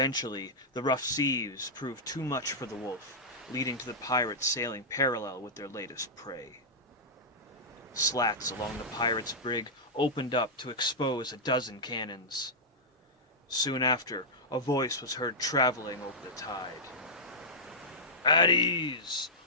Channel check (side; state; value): both; normal; correlation -0.10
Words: the rough seas proved too much for the Wolf, leading to the pirates sailing parallel with their latest prey. Slats along the pirates' brig opened up to expose a dozen cannons. Soon after, a voice was heard traveling over the tide. At ease,